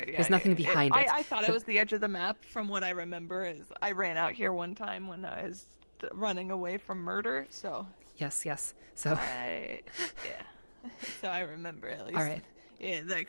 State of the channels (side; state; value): both; inverted; correlation -1.00